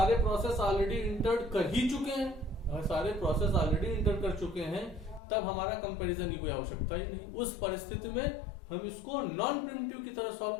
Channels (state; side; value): drops out; right; at 5.2 s